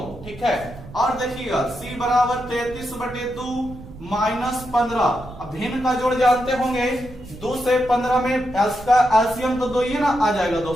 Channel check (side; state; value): right; noise; rumble, 16 dB below the sound